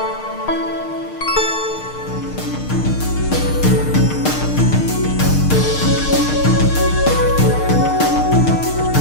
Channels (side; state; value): right; late; 6.5 ms